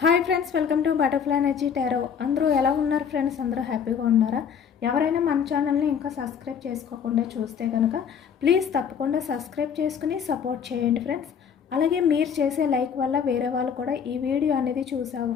Hi friends, welcome to butterfly energy tarot. అందరూ ఎలా ఉన్నారు ఫ్రెండ్స్? అందరూ హ్యాపీగా ఉన్నారా? ఎవరైనా మన ఛానల్ని ఇంకా సబ్స్క్రైబ్ చేసుకోకుండా చూస్తే కనుక ప్లీజ్ తప్పకుండా సబ్స్క్రైబ్ చేసుకుని సపోర్ట్ చేయండి ఫ్రెండ్స్. అలాగే మీరు చేసే లైక్ వల్ల వేరే వాళ్ళు కూడా ఈ వీడియో అనేది చూసే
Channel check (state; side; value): quieter; right; 7.3 dB